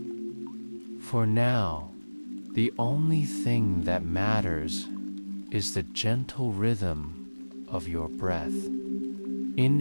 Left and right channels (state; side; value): inverted; both; correlation -1.00